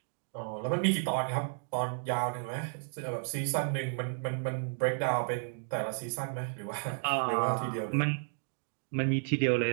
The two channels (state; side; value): silent; left; digital silence